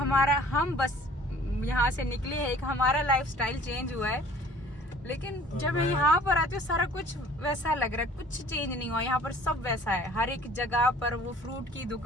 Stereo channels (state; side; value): normal; both; correlation 0.51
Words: हम बस यहाँ से निकले हैं, एक हमारा लाइफस्टाइल चेंज हुआ है। लेकिन जब मैं यहाँ पर आती हूँ सारा कुछ वैसा लग रहा है, कुछ चेंज नहीं हुआ। यहाँ पर सब वैसा है, हर एक जगह पर वो फ्रूट की